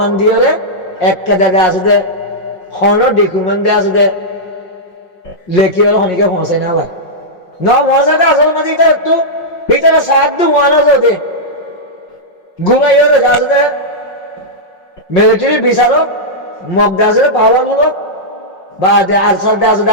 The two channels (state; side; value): late; right; 5.5 ms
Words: দিয়ে একটা জায়গা আছে হন ডকুমেন্ট দিয়ে আছে লেখি হলো হনিকে পৌঁছাই না ভাই ন পৌঁছাতে আসল মাঝে এটা একটু ভিতরে সাহায্য ওয়ান আছে ঘুমাই হলে আছে মিলিটারি বিচারক মগদা আছে পাওয়ার মূলক বা আরসার দে আছে